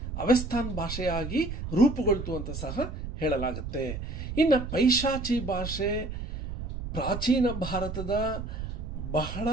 ಅವಸ್ಥಾನ್ ಭಾಷೆಯಾಗಿ ರೂಪುಗೊಳ್ತು ಅಂತ ಸಹ ಹೇಳಲಾಗುತ್ತೆ. ಇನ್ನು ಪೈಶಾಚಿ ಭಾಷೆ ಪ್ರಾಚೀನ ಭಾರತದ ಬಹಳ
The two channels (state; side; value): noise; right; rumble, 6 dB below the sound